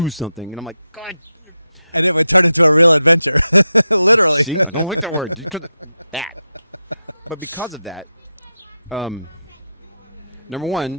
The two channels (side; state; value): both; inverted; correlation -0.88